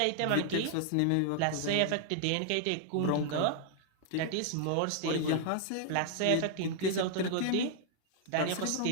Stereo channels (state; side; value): different; both; correlation 0.00